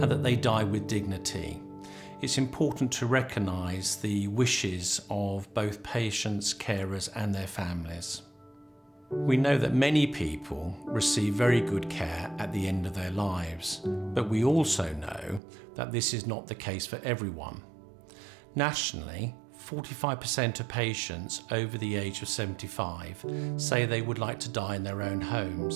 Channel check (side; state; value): left; drops out; at 15.4 s